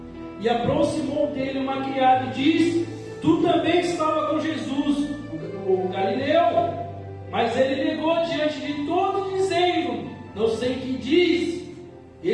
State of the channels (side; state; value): both; identical; correlation 1.00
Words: e aproximou dele uma criada e disse: tu também estava com Jesus, o Galileu. Mas ele negou diante de todos, dizendo: não sei o que diz.